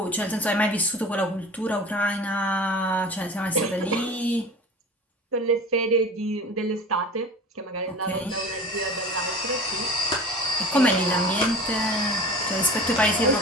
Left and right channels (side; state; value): both; normal; correlation 0.37